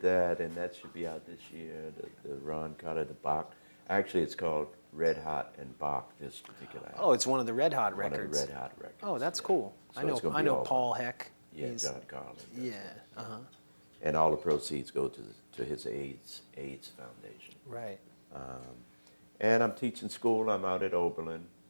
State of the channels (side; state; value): both; inverted; correlation -1.00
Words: that, and that should be out this year, the Ron Carter, the Bach. Actually, it's called Red Hot and Bach, this particular album. Oh, it's one of the Red Hot records. One of the Red Hot records. Oh, that's yeah. cool. So it's gonna be all Paul Bach. Heck. Yeah, He's- John Carlin. Yeah. Uh-huh. And all the proceeds go to his AIDS Foundation. Right. And I'm teaching school. I'm out at Oberlin.